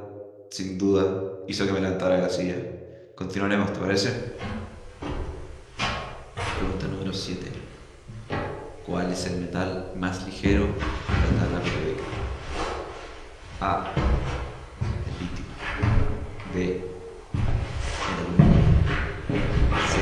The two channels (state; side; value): identical; both; correlation 1.00